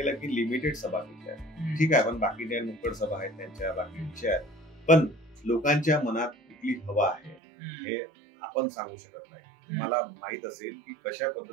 की लिमिटेड सभा घेतल्या. ठीक आहे, पण बाकी त्या नुक्कड सभा आहेत त्यांच्या, बाकी विषय आहेत. पण लोकांच्या मनात कुठली हवा आहे हे आपण सांगू शकत नाही. तुम्हाला माहित असेल की कशा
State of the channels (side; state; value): left; drops out; at 7.4 s